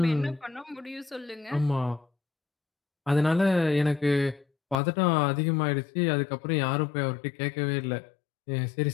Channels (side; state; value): right; drops out; at 4.8 s